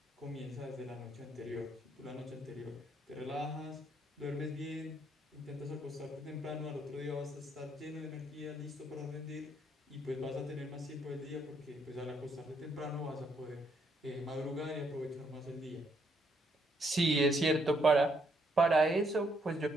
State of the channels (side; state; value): both; normal; correlation 0.73